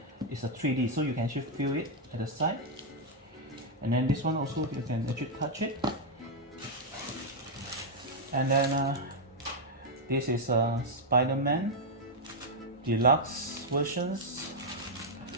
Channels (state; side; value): normal; both; correlation -0.02